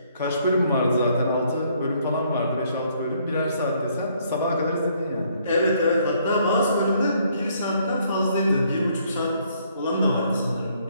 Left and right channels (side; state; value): both; inverted; correlation -0.67